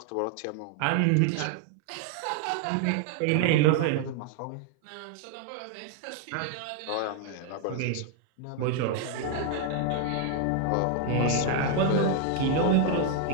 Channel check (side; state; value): both; different; correlation 0.00